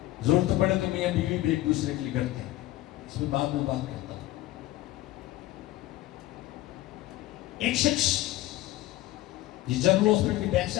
ضرورت پڑے تو میاں بیوی بھی ایک دوسرے کے لیے کرتے ہیں، اس میں بعد میں بات کرتا ہوں۔ ایک شخص یہ جنرل ہاسپٹل کی بیک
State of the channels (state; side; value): quieter; right; 16.5 dB